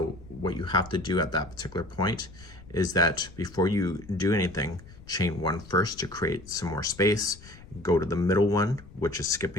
what you have to do at that particular point is that before you do anything, chain 1 first to create some more space, go to the middle one, which is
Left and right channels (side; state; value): left; noise; rumble, 19 dB below the sound